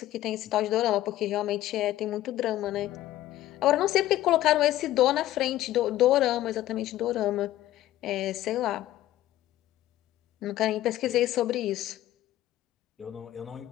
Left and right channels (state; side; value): quieter; right; 14.3 dB